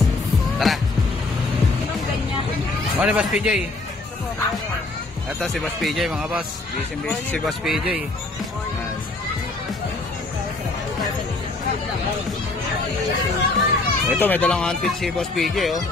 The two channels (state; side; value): quieter; right; 3.2 dB